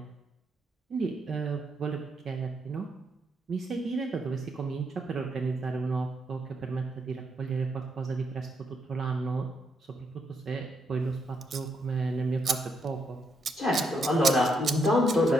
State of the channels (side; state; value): both; normal; correlation 0.77